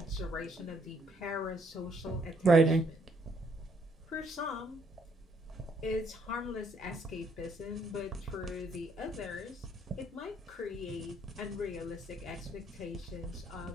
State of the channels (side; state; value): both; normal; correlation 0.69